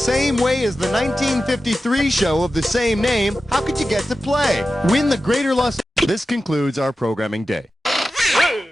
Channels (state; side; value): normal; both; correlation 0.93